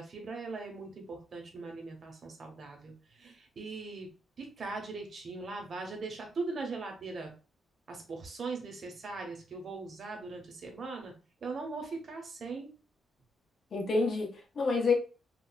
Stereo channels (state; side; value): normal; both; correlation 0.78